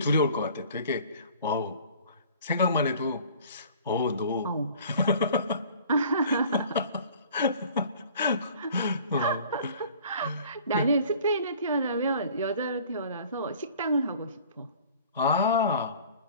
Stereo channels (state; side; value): inverted; both; correlation -0.49